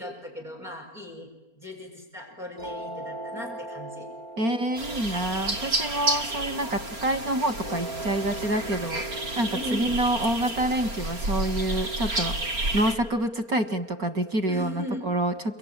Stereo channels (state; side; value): late; left; 4.4 ms